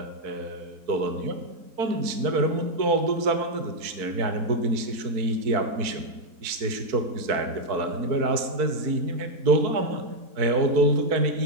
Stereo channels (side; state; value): left; late; 4.5 ms